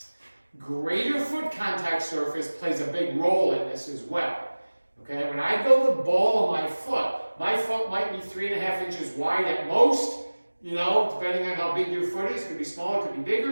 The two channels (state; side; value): inverted; both; correlation -1.00